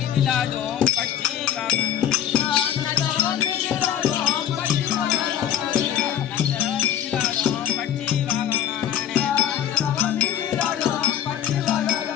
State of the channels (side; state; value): right; quieter; 10.3 dB